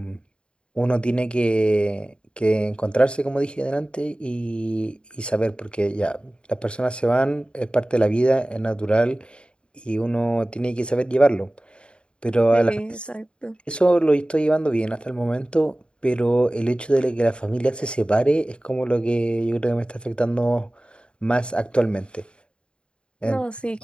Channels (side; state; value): right; late; 0.054 ms